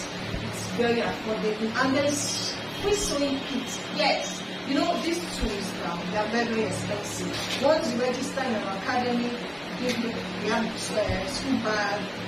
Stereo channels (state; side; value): identical; both; correlation 1.00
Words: It's very affordable, and there's free sewing kits. Yes. You know, these tools, they are very, very expensive. Once you register in our academy, we have school bag